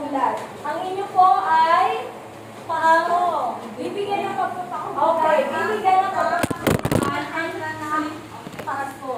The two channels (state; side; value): identical; both; correlation 1.00